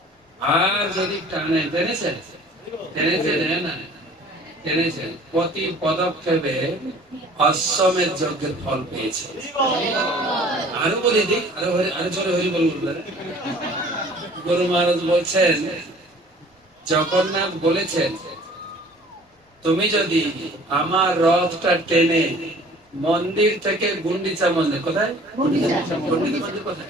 আর যদি টেনেছেন প্রতি পদক্ষেপে অশ্বমেধ যজ্ঞের ফল পেয়েছে। আরো বলে দিক, আরো জোরে হরি বলবেন। গুরু মহারাজ বলছেন, জগন্নাথ বলেছেন, তুমি যদি আমার রথটা টেনে মন্দির থেকে গুন্ডিচা মন্দির, কোথায় মন্দির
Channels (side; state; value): both; normal; correlation 0.50